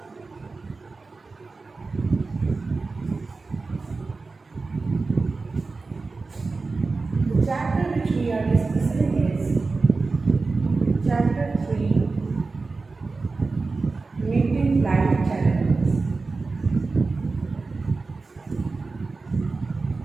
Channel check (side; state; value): left; quieter; 3.9 dB